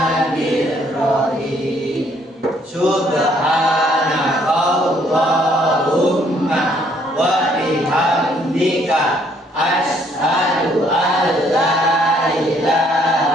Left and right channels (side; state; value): both; normal; correlation 0.66